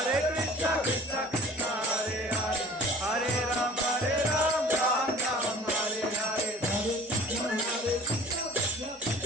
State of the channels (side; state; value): both; normal; correlation 0.45